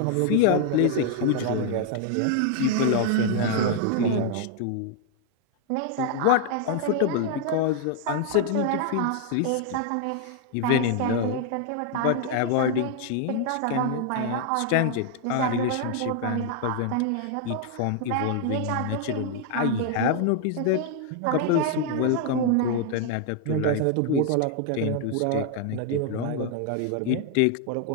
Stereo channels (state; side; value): different; both; correlation 0.00